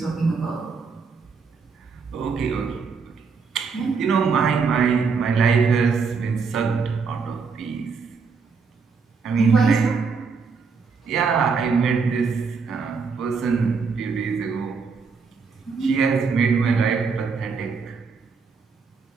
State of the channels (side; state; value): left; quieter; 5.2 dB